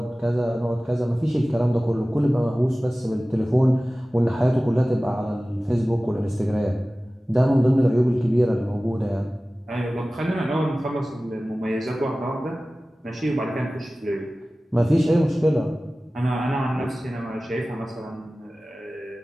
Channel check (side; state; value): both; normal; correlation 0.97